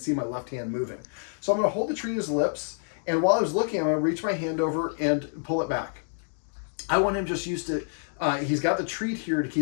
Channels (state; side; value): silent; right; 60 dB below the other